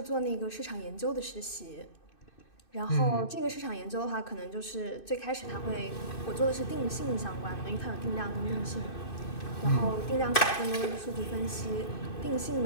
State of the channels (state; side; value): late; right; 2.6 ms